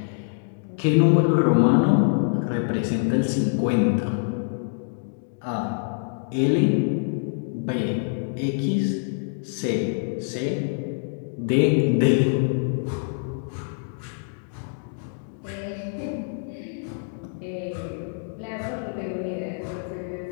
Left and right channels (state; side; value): silent; right; digital silence